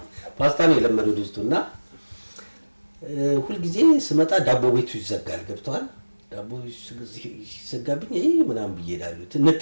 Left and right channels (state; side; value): inverted; both; correlation -1.00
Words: ፓስታ ነው የለመደው ድስቱና ሁሉ ጊዜ ስመጣ ዳቦ ቤቱ ይዘጋል ገብቷል ዳቦ ሲዘጋብኝ ምናምን ብዬዳሉ